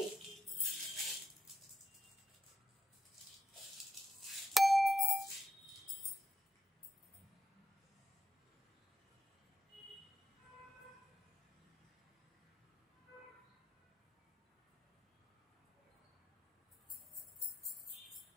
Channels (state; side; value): normal; both; correlation 0.83